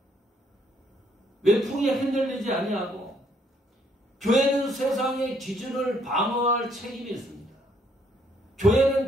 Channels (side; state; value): both; normal; correlation 0.68